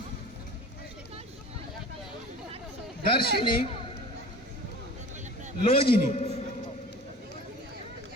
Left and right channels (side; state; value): both; normal; correlation 0.40